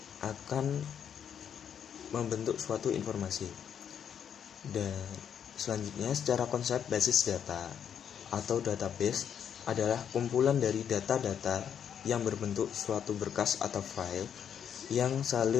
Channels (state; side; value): quieter; right; 8.4 dB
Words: akan membentuk suatu informasi. Dan selanjutnya, secara konsep basis data atau database adalah kumpulan dari data-data yang berbentuk suatu berkas atau file yang